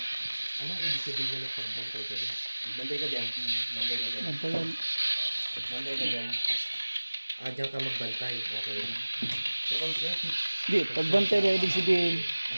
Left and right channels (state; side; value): inverted; both; correlation -1.00